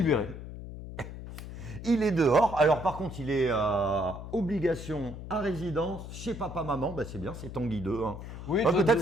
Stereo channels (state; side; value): noise; left; hum, 10 dB below the sound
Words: Il est dehors. Alors par contre, il est obligation à résidence chez papa-maman. Bah, c'est bien, c'est Tanguy 2. Hein. Oui, Ouais, peut-être,